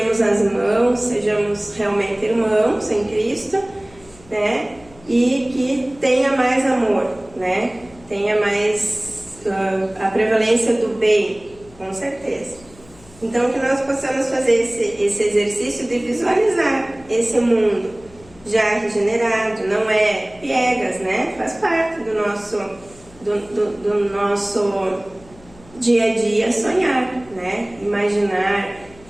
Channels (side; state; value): left; noise; hum, 24 dB below the sound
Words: as mãos, sejamos realmente irmãos em Cristo, né? E que tenha mais amor, né? Tenha mais a prevalência do bem, com certeza. Então que nós possamos fazer esse exercício de visualizar esse mundo já regenerado, não é piegas, né? Faz parte do nosso dia a dia sonhar, né? Imaginar,